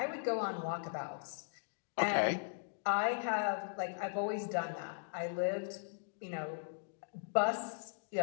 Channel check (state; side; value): silent; right; digital silence